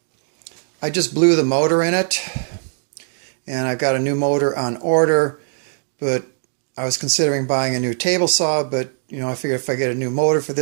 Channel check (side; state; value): left; silent; digital silence